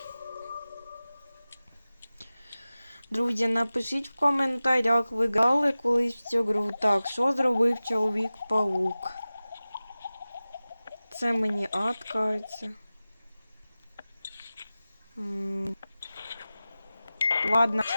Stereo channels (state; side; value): inverted; both; correlation -0.96